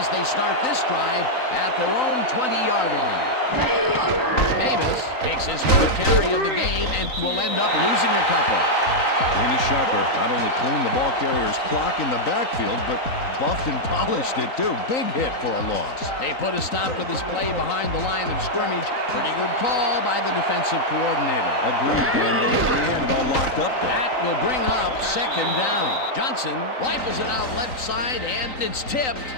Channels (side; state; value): right; late; 3.9 ms